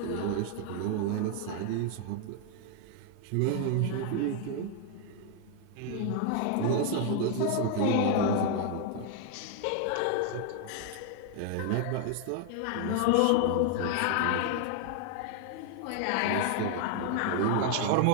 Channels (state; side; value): different; both; correlation 0.00